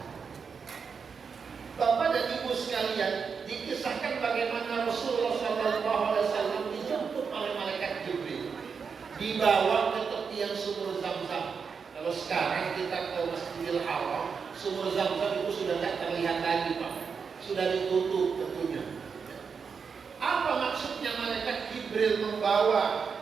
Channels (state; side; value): quieter; left; 5.9 dB